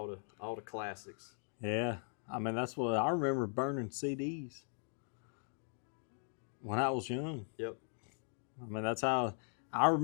the classics. Yeah, I mean that's what I remember, burning CDs when I was young. Yep. I mean that's how I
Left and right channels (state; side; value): silent; right; 52 dB below the other